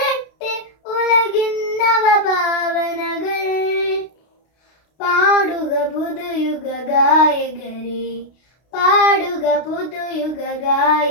ഉലകിൻ നവഭാവനകൾ. പാടുക പുതുയുഗ ഗായകരെ പാടുക പുതുയുഗ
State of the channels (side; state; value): right; late; 32 ms